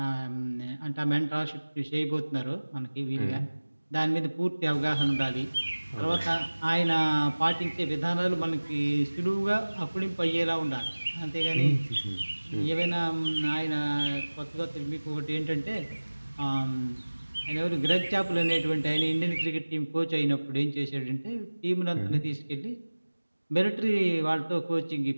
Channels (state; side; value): inverted; both; correlation -1.00